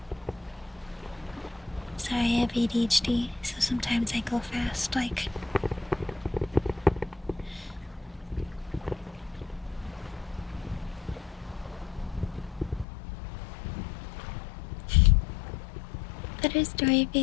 Sorry, I have ADHD, so sometimes I go fast, like. Better story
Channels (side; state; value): right; drops out; at 12.9 s